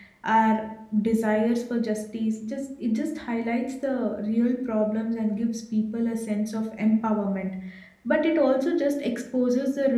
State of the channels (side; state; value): both; identical; correlation 1.00